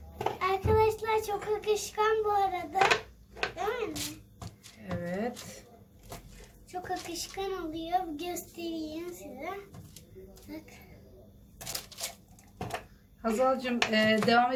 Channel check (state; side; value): identical; both; correlation 1.00